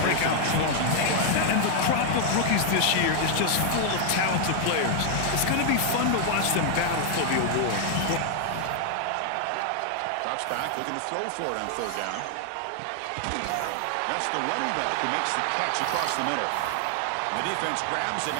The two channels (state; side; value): different; both; correlation 0.00